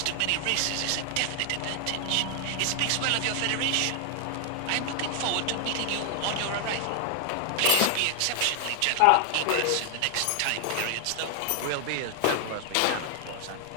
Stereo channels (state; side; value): different; both; correlation 0.00